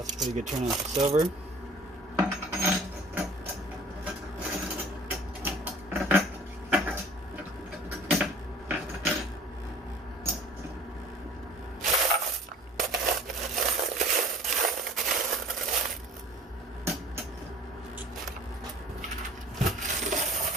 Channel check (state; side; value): normal; both; correlation 0.49